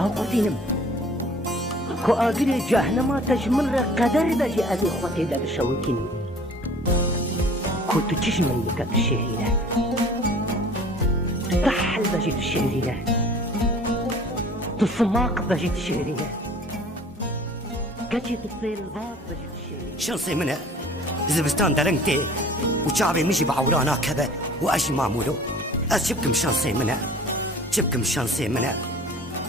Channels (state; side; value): normal; both; correlation 0.49